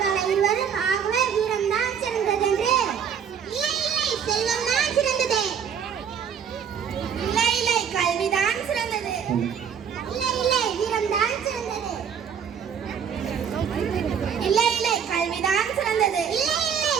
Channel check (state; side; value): quieter; left; 7.6 dB